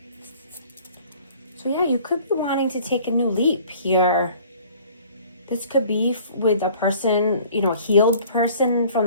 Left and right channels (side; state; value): both; inverted; correlation -0.52